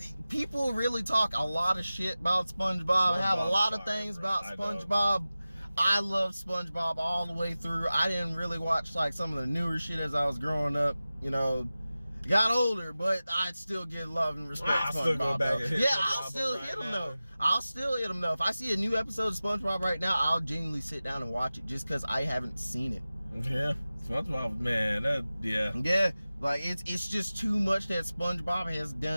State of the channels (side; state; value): both; inverted; correlation -0.96